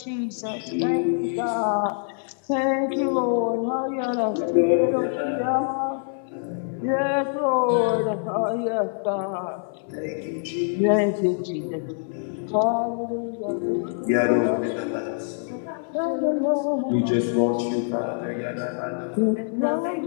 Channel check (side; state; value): right; silent; 62 dB below the other